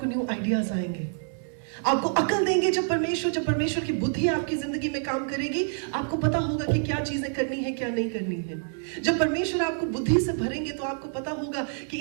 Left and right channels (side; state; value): left; silent; digital silence